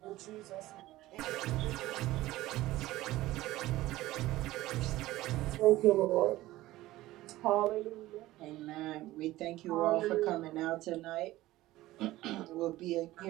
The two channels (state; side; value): quieter; left; 16.8 dB